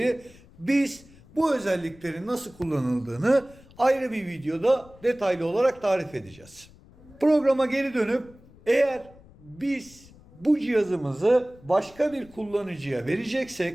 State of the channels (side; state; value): left; noise; rumble, 24 dB below the sound